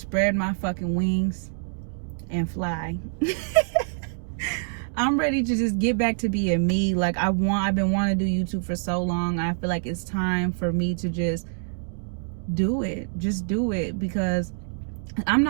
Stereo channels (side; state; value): left; silent; digital silence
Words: my fucking wings and fly. I'm ready to just get back to being me. Like I've been wanting to do YouTube for so long. I feel like it's time for me to just do it. Just do it, because I'm